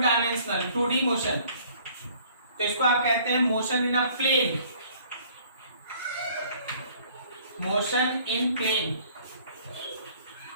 2D motion, तो इसको आप कहते हैं motion in a plane, motion in plane.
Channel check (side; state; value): both; inverted; correlation -0.56